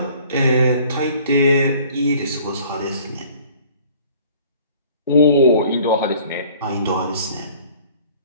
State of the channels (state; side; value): inverted; both; correlation -0.52